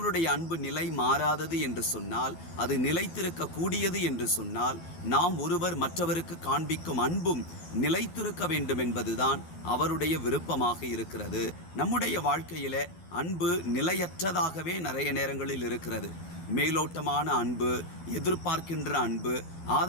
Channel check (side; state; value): right; late; 12 ms